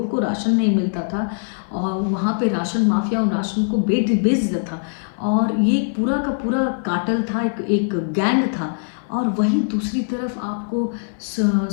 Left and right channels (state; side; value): silent; right; 58 dB below the other